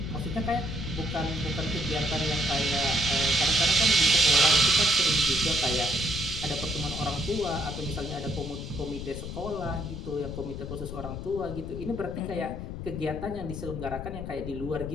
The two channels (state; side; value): noise; left; rumble, 8 dB below the sound